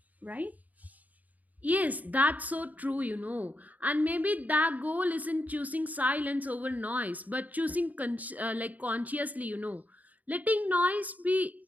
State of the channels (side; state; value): left; late; 0.077 ms